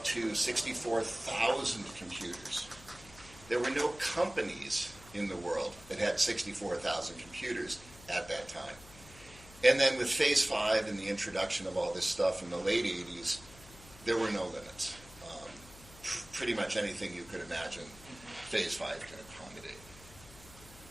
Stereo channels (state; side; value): noise; left; hum, 20 dB below the sound